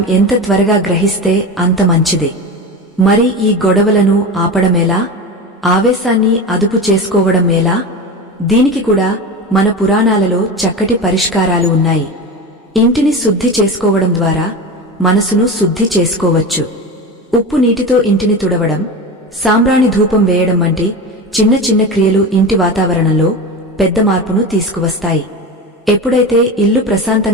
ఎంత త్వరగా గ్రహిస్తే అంత మంచిదే. మరి ఈ గొడవలను ఆపడమేలా? ఆవేశాన్ని అదుపు చేసుకోవడం ఎలా? దీనికి కూడా మన పురాణాలలో చక్కటి పరిష్కారాలు ఉన్నాయి. ఇంటిని శుద్ధి చేసుకోవడం ద్వారా మనసును శుద్ధి చేసుకోవచ్చు. ఉప్పు నీటితో ఇంటిని తుడవడం, సాంబ్రాణి ధూపం వేయడం వంటి చిన్న చిన్న క్రియలు ఇంటి వాతావరణంలో పెద్ద మార్పును తీసుకువస్తాయి. ఎప్పుడైతే ఇల్లు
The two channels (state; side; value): normal; both; correlation 0.25